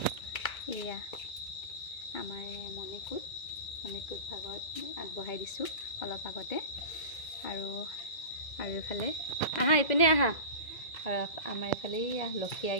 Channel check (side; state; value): right; late; 2.0 ms